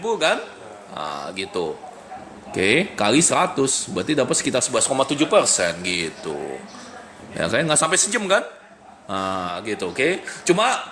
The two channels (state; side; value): identical; both; correlation 1.00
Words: kan? Nah, gitu. Oke, kali 100 berarti dapat sekitar 11,7% gitu. Ya kan nggak sampai sejam kan? Nah, gitu, oke. Cuma